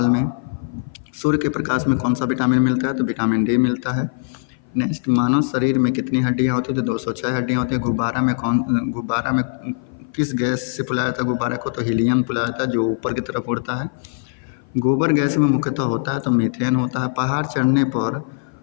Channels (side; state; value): right; silent; 57 dB below the other